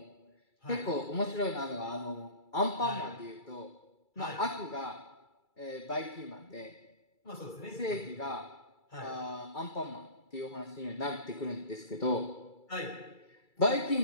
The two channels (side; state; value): right; late; 2.3 ms